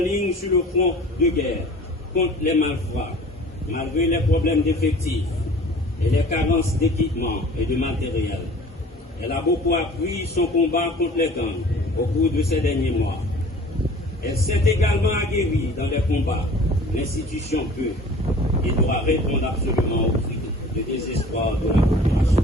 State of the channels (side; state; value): both; normal; correlation 0.46